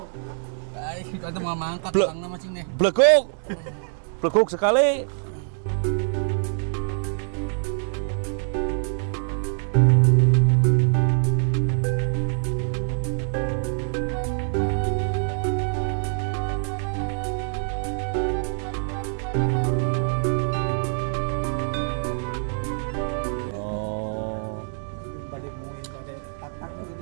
Ai, itu mau mangkat orangna macing deh. Blekuk. Blekuk sekali.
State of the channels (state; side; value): silent; left; digital silence